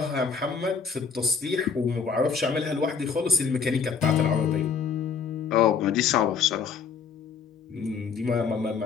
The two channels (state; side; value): quieter; right; 6.0 dB